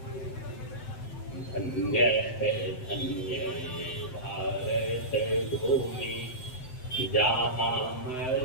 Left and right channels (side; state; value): right; late; 7.8 ms